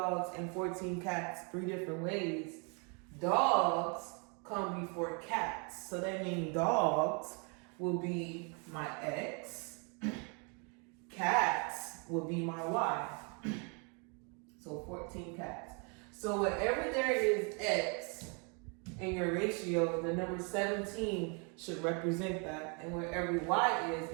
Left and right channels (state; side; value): quieter; left; 35.4 dB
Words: and 14 cats 3 different ways, dogs come before cats. So that means dogs will be my X, cats will be my Y. So 14 cats. So wherever there is X in your ratio, the number 17 should represent that. And wherever Y is